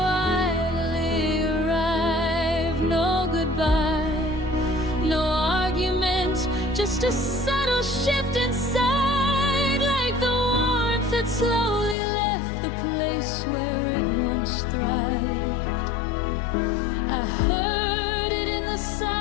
arrived. No goodbye, no argument, just a subtle shift inside, like the warmth that slowly left the place where it once thrived. I heard it in the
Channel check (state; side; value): drops out; right; at 12.0 s